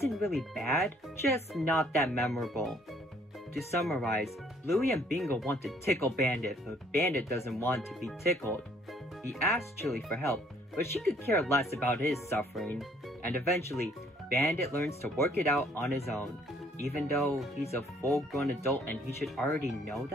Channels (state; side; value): normal; both; correlation 0.62